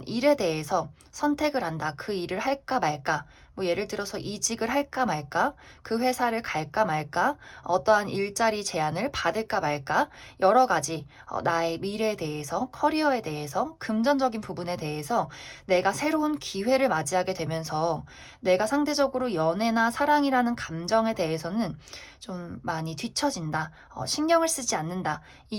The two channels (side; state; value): both; identical; correlation 1.00